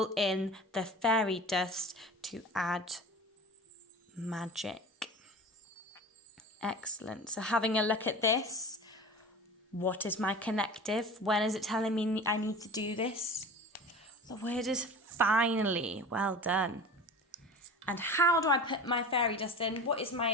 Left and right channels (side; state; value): both; normal; correlation 0.35